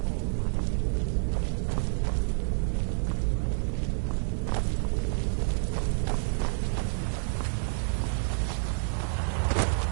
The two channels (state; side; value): silent; left; 59 dB below the other